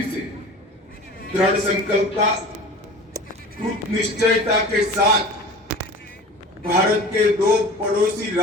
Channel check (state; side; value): normal; both; correlation 0.39